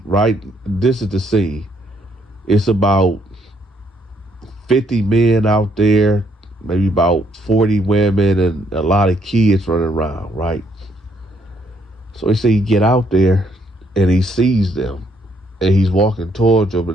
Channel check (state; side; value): normal; both; correlation 0.70